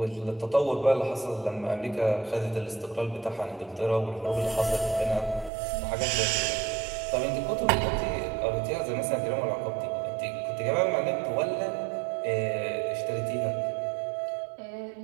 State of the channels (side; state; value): left; drops out; at 5.5 s